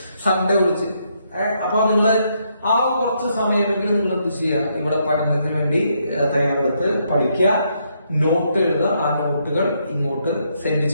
സൺഡേ വിളിച്ച്. അപ്പൊ നിങ്ങൾ ആ കുറച്ച് സമയമെങ്കിലും നിങ്ങൾ എന്ത് ചെയ്യുക, ഇവിടെ പഠനത്തിന് വേണ്ടി തയ്യാറെടുത്ത് പഠിക്കുക, നോട്ട് എഴുതുക. ആ നോട്ടുകൾ ഇങ്ങോട്ട് സെൻഡ്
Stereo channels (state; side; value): inverted; both; correlation -0.76